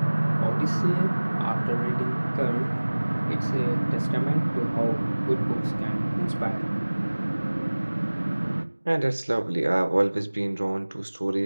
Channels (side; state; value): both; inverted; correlation -1.00